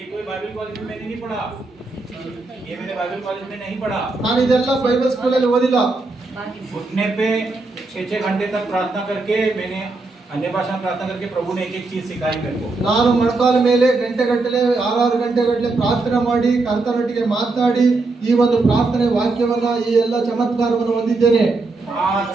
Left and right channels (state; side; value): quieter; left; 3.5 dB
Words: कोई बाइबल कॉलेज में मैंने नहीं पढ़ा, ये मैंने बाइबल कॉलेज में नहीं पढ़ा। ನಾನು ಇದೆಲ್ಲ ಬೈಬಲ್ ಸ್ಕೂಲಲ್ಲಿ ಓದಿಲ್ಲ. घुटने पे 6-6 घंटे तक प्रार्थना करके मैंने अन्य भाषा में प्रार्थना करके प्रभु ने एक एक चीज सिखाई मेरे को। ನಾನು ಮೊಣಕಾಲ ಮೇಲೆ ಗಂಟೆಗಟ್ಟಲೆ 6 ಗಂಟೆಗಟ್ಟಲೆ ಪ್ರಾರ್ಥನೆ ಮಾಡಿ ಕರ್ತನೊಟ್ಟಿಗೆ ಮಾತನಾಡಿ ಈ ಒಂದು ಪ್ರಾರ್ಥನೆ ವಾಕ್ಯವನ್ನ ಈ ಎಲ್ಲ ಚಮತ್ಕಾರವನ್ನು ಹೊಂದಿದ್ದೇನೆ. 5